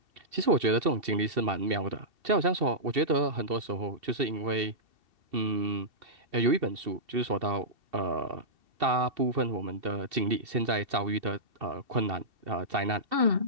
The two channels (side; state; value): left; late; 2.7 ms